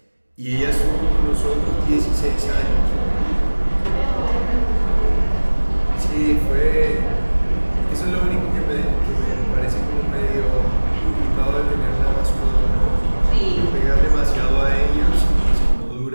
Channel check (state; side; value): inverted; both; correlation -1.00